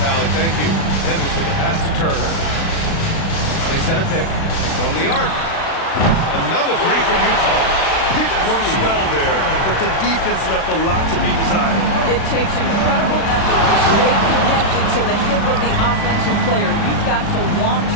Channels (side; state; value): right; late; 36 ms